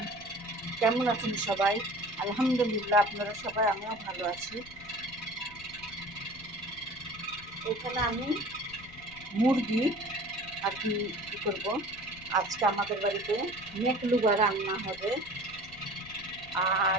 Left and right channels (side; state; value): left; noise; rumble, 20 dB below the sound